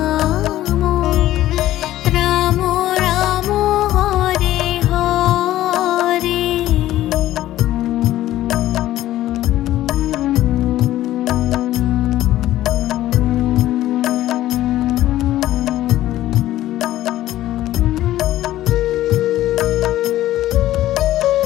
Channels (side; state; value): right; quieter; 14.3 dB